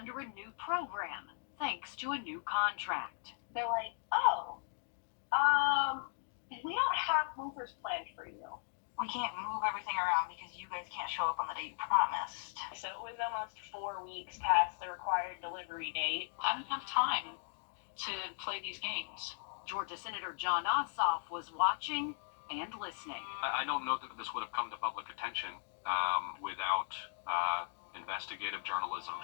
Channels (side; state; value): right; silent; digital silence